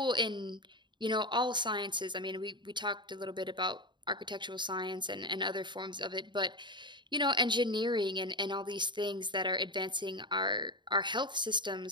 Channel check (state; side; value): late; left; 0.22 ms